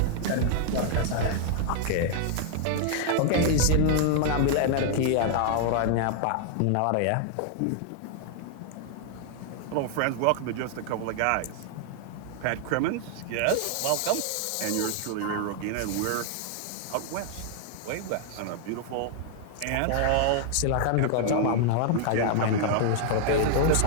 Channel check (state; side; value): different; both; correlation 0.00